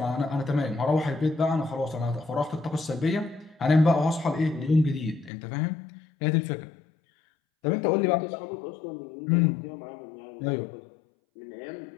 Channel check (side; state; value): right; drops out; at 5.3 s